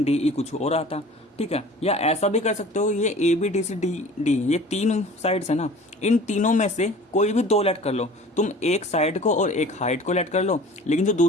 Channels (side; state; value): both; normal; correlation 0.44